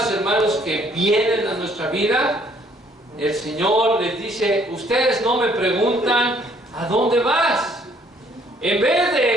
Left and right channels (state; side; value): normal; both; correlation 0.63